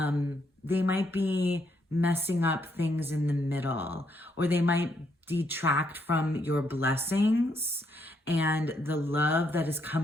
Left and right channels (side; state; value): both; normal; correlation 0.75